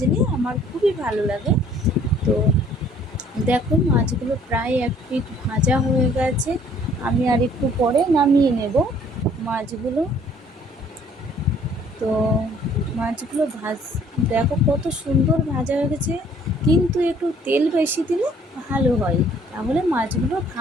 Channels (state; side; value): normal; both; correlation 0.58